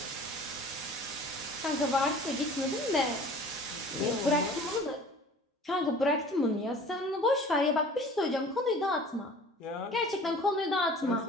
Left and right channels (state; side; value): normal; both; correlation 0.46